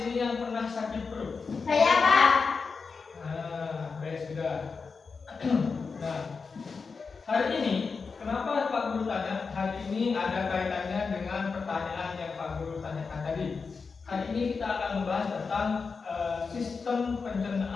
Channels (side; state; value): right; quieter; 4.9 dB